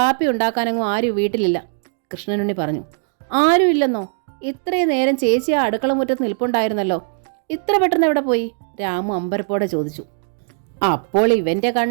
ഉണ്ടാക്കാനങ്ങും ആരും വീട്ടിലില്ല, കൃഷ്ണനുണ്ണി പറഞ്ഞു. ആരും ഇല്ലെന്നോ? ഇത്രയും നേരം ചേച്ചി ആ അടുക്കള മുറ്റത്ത് നിൽപ്പുണ്ടായിരുന്നല്ലോ. ഇത്ര പെട്ടെന്ന് എവിടെ പോയി? രാമു അമ്പരപ്പോടെ ചോദിച്ചു. അപ്പോൾ ഇവൻ്റെ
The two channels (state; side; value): silent; left; digital silence